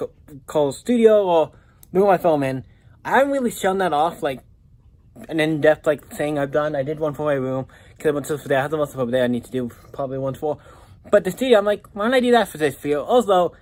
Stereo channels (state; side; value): identical; both; correlation 1.00